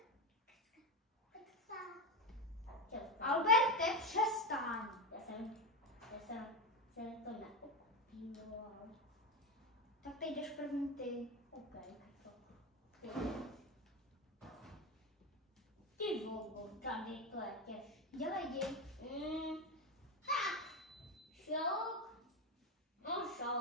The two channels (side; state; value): both; normal; correlation 0.14